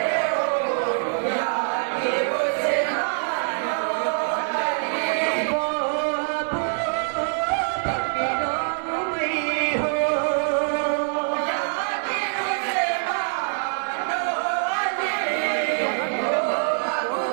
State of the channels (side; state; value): left; silent; 62 dB below the other